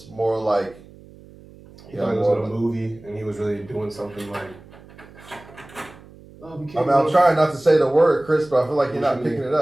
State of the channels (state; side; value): noise; right; hum, 22 dB below the sound